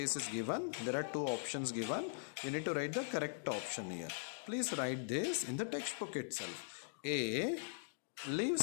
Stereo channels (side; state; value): right; silent; digital silence